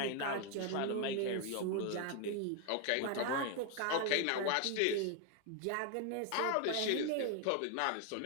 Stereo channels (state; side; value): different; both; correlation 0.01